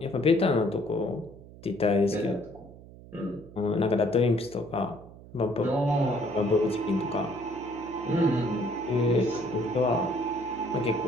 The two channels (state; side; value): noise; right; hum, 19 dB below the sound